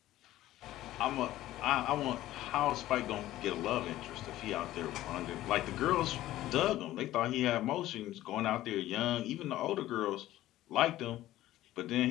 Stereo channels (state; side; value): quieter; right; 14.9 dB